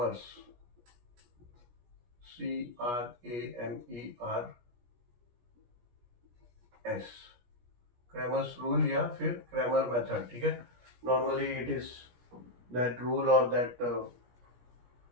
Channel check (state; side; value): late; left; 17 ms